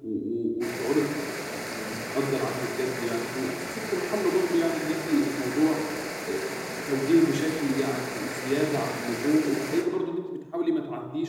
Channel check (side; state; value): both; identical; correlation 1.00